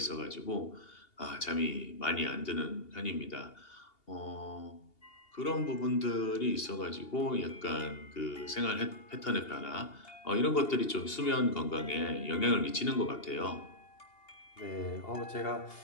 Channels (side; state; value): right; late; 2.8 ms